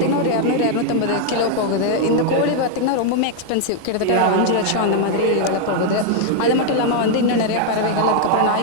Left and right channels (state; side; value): different; both; correlation 0.00